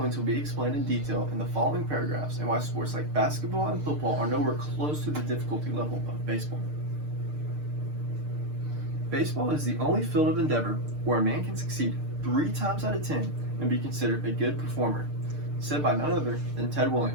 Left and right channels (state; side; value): late; left; 6.6 ms